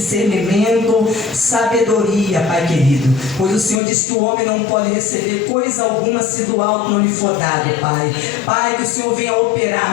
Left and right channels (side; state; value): right; drops out; at 3.8 s